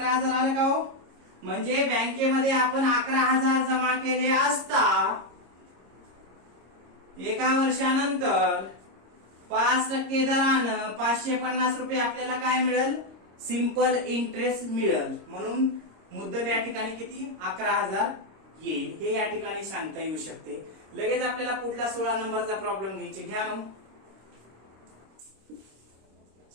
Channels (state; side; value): late; left; 26 ms